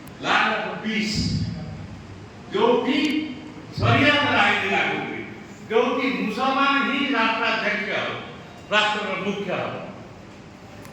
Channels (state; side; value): identical; both; correlation 1.00